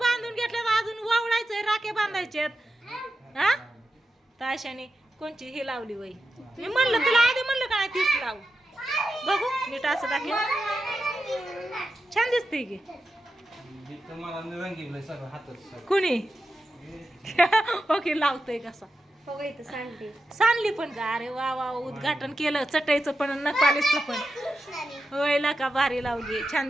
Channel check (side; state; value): both; normal; correlation 0.90